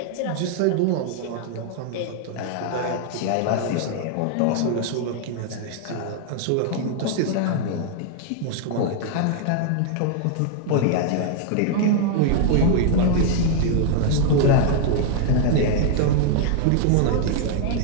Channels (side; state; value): both; different; correlation 0.00